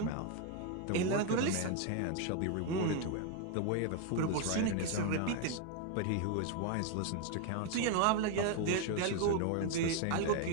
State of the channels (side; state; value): both; different; correlation 0.01